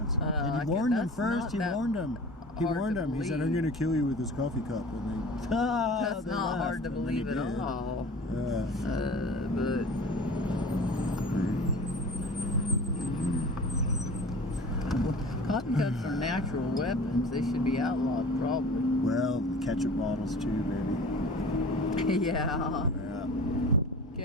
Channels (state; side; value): normal; both; correlation 0.40